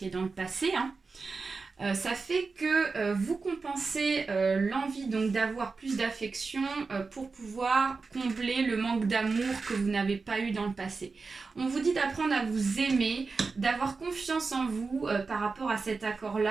dans le passé, hein, ça fait que vous compensez l'envie donc d'avoir plus d'affection pour pouvoir combler le manque d'amour que vous n'avez pas eu dans le passé. On vous dit d'apprendre à vous aimer, d'avoir confiance en vous par rapport à cet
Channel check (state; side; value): quieter; left; 4.3 dB